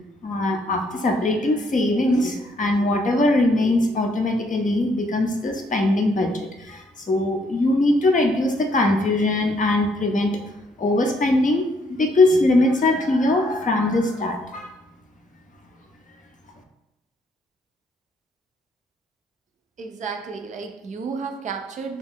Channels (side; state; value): both; normal; correlation 0.69